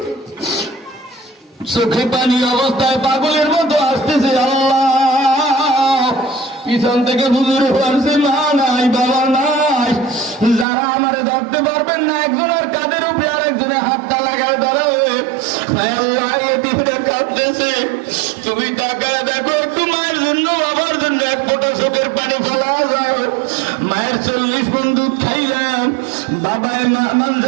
চোখে পানি অবস্থায় পাগলের মতো আসতেছে আল্লাহ পিছন থেকে হুজুর বলছে মা নাই বাবা নাই যারা আমারে ধরতে পারবেন না একজনের কাঁধের উপরে আরেকজনের হাতটা লাগায় ধরাবে আল্লাহ এতিমরা কাঁদতেছে তুমি তাকায় দেখো একটু মায়ের জন্য বাবার জন্য এক ফোঁটা চোখের পানি ফেলা যায় মায়ের 40 মণ দুধ খাইলাম বাবায়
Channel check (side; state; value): left; drops out; at 10.7 s